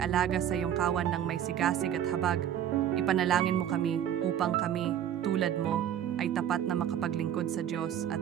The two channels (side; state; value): left; quieter; 10.2 dB